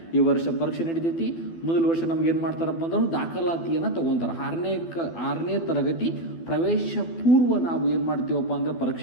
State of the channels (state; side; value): late; right; 12 ms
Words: ಈ ವರ್ಷ ಪರೀಕ್ಷೆ ನಡೀತೈತಿ. ಮೊದಲ ವರ್ಷ ನಮ್ಗೆ ಏನು ಮಾಡ್ತಾರಪ್ಪ ಅಂದ್ರೆ ದಾಖಲಾತಿಯನ್ನು ತೊಗೊತಾರೆ. 6ನೇ ತರಗತಿ ಪ್ರವೇಶ ಪೂರ್ವ ನಾವು ಏನು ಮಾಡ್ತೀವಪ್ಪ ಅಂದರೆ